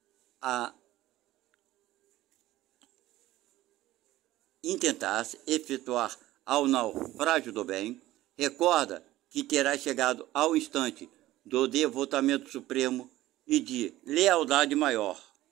ao naufrágio do bem, recorda que terá chegado ao instante do devotamento supremo e de lealdade maior.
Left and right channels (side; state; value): left; quieter; 15.8 dB